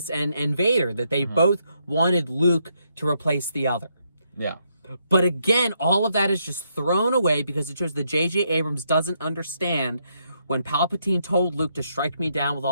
and Vader, that they both wanted Luke to replace the other. Yeah. But again, all of that is just thrown away because it shows that J.J. Abrams doesn't understand. When Palpatine told Luke to strike me down with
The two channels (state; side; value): inverted; both; correlation -0.77